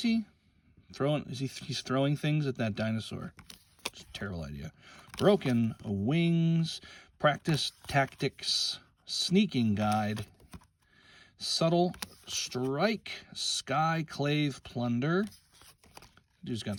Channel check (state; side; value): identical; both; correlation 1.00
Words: He's throwing things at that dinosaur. It's a terrible idea. Broken Wings. Practice Tactics. Sneaking Guide. Subtle Strike. Skyclave Plunder. Dude's